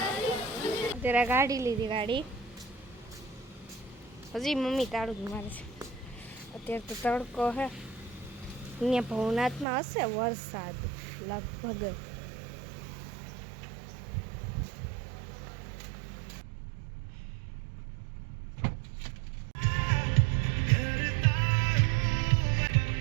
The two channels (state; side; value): drops out; left; at 9.7 s